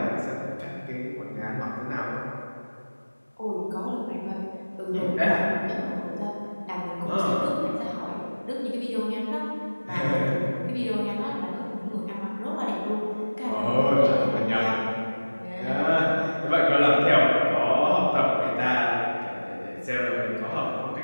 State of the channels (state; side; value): inverted; both; correlation -1.00